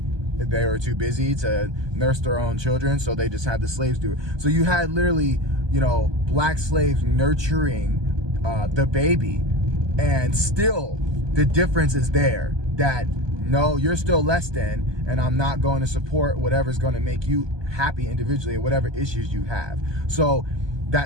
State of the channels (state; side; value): late; left; 1.2 ms